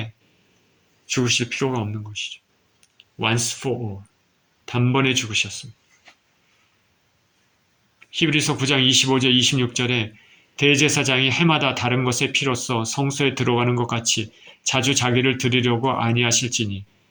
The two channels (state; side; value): identical; both; correlation 1.00